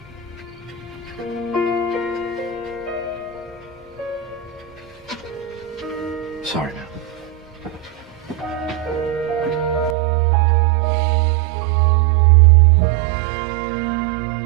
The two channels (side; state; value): left; drops out; at 10.0 s